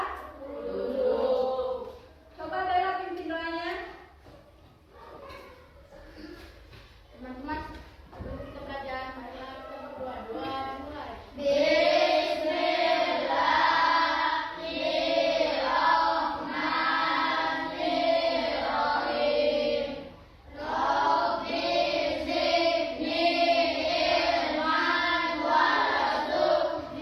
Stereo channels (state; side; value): identical; both; correlation 1.00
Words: dulu. Coba Bella pimpin doanya. Teman-teman, sebelum kita belajar, marilah kita berdoa. Mulai.